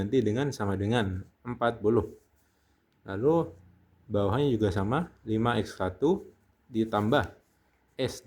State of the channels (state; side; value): identical; both; correlation 1.00